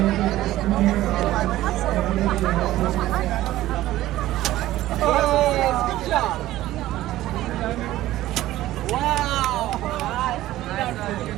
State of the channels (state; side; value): quieter; left; 15.2 dB